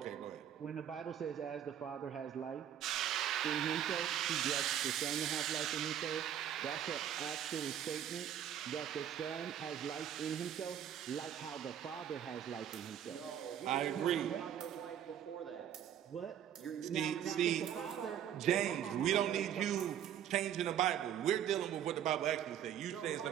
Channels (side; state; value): left; quieter; 9.9 dB